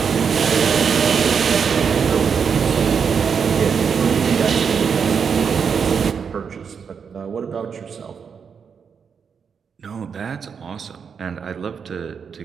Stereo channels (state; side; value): quieter; left; 6.5 dB